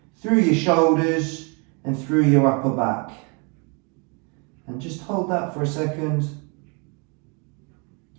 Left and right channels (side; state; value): left; quieter; 33.7 dB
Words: through your shoulders and through your upper back. And just hold that for a second.